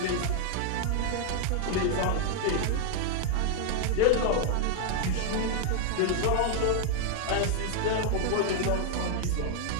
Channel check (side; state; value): both; different; correlation 0.00